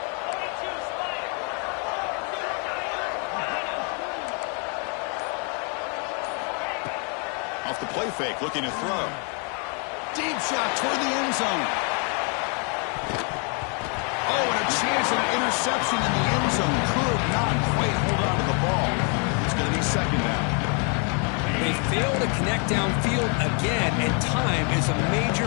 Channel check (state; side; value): quieter; right; 38.1 dB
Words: Off the play fake, looking to throw. Deep shot toward the end zone. Oh, and a chance at an interception in the end zone. Could not quite hold on to the ball. It's going to be second down. They fail to connect downfield again, and time is a